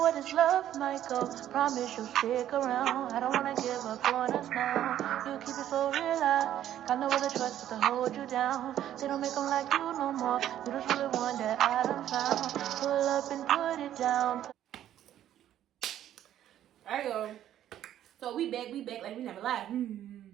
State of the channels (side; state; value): left; quieter; 11.6 dB